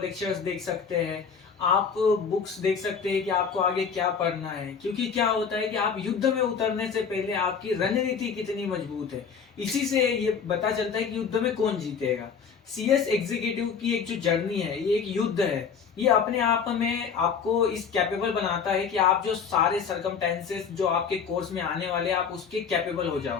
देख सकते हैं, आप बुक्स देख सकते हैं कि आपको आगे क्या पढ़ना है। क्योंकि क्या होता है कि आप युद्ध में उतरने से पहले आपकी रणनीति कितनी मजबूत है, इसी से ये पता चलता है कि युद्ध में कौन जीतेगा। सीएस एग्जीक्यूटिव की एक जो जर्नी है, ये एक युद्ध है। ये अपने आप में आपको इस कैपेबल बनाता है कि आप जो सारे सरकमटेंसेस जो आपके कोर्स में आने वाले हैं, आप उसके कैपेबल हो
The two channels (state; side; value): quieter; right; 6.4 dB